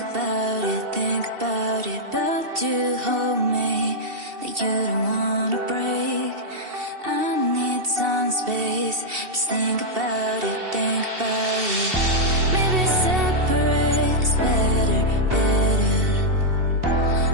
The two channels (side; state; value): left; late; 2.7 ms